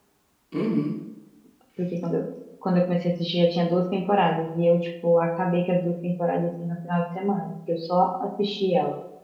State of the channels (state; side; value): identical; both; correlation 1.00